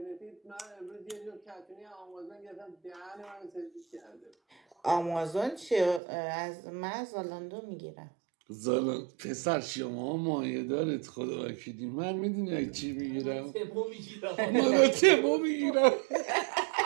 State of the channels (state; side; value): drops out; left; at 6.0 s